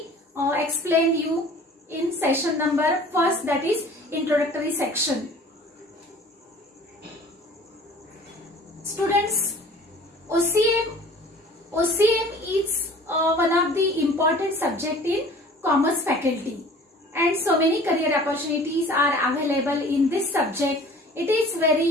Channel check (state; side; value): normal; both; correlation 0.47